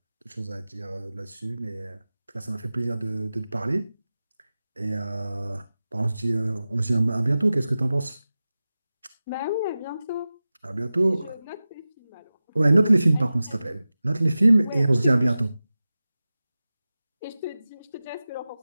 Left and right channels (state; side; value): inverted; both; correlation -0.95